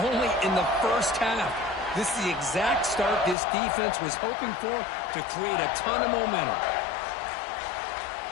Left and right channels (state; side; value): drops out; right; at 3.4 s